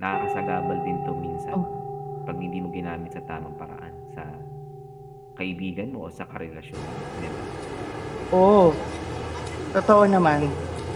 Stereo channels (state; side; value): identical; both; correlation 1.00